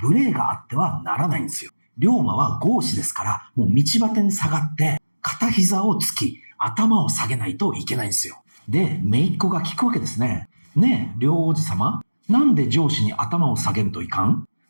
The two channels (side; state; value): both; inverted; correlation -1.00